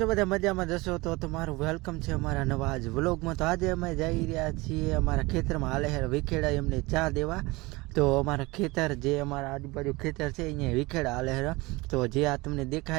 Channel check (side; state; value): left; quieter; 22.9 dB